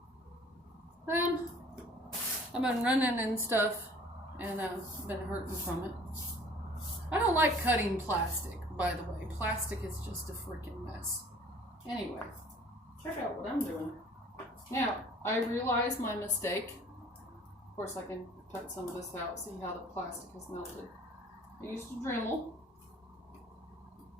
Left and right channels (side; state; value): both; normal; correlation 0.52